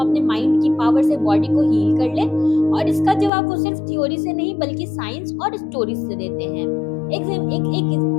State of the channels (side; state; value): right; drops out; at 3.3 s